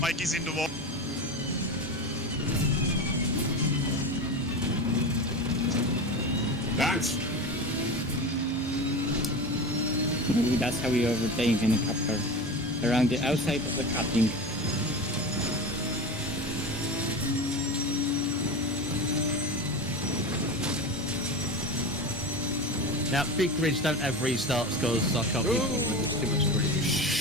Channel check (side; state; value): both; normal; correlation 0.27